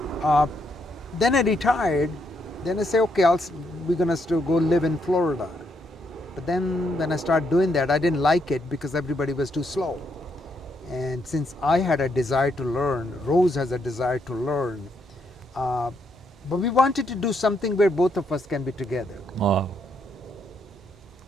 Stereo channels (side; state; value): both; normal; correlation 0.76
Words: Uh, then I retired. Then I say, okay, we're gonna still go live in Florida. But then when I started doing that, I didn't like it because everybody was too slow. And since I had a desire to learn, Rose has a desire to learn, uh, but we wanted to do something where both of us can be together. Wow.